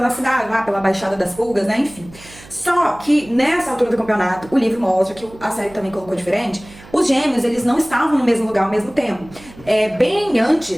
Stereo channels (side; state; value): right; noise; hum, 21 dB below the sound